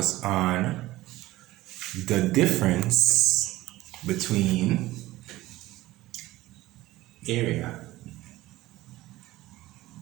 on the difference between area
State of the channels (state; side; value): quieter; left; 17.2 dB